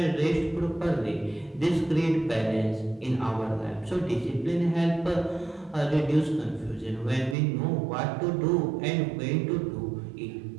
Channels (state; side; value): drops out; left; at 7.4 s